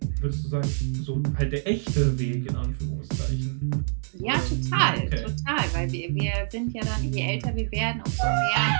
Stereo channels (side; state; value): left; silent; digital silence